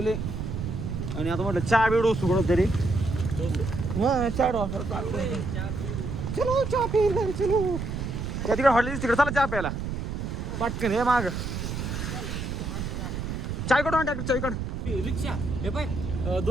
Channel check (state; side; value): noise; right; rumble, 4 dB below the sound